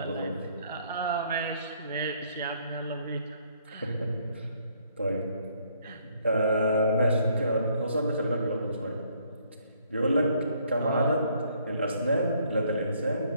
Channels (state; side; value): inverted; both; correlation -0.66